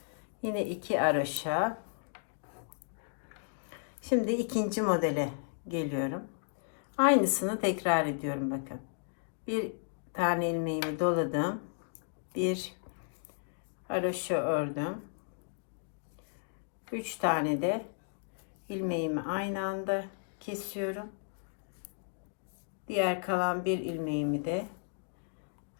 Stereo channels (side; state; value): right; silent; digital silence